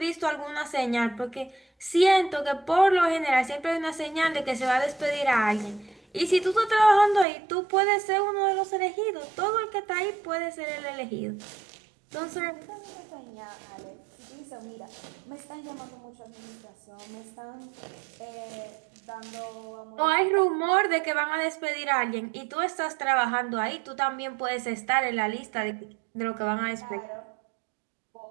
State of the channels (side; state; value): left; drops out; at 7.2 s